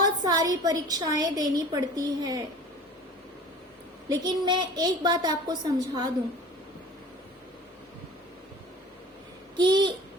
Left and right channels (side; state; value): both; normal; correlation 0.42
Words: सारी परीक्षाएं देनी पड़ती है। लेकिन मैं एक बात आपको समझा दूं कि